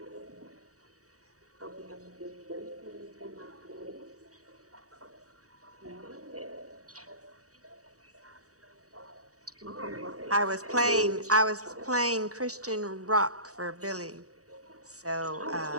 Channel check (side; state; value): left; late; 0.66 ms